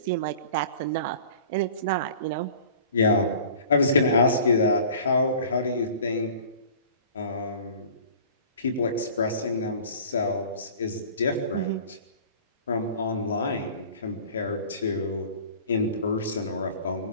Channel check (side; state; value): both; inverted; correlation -0.45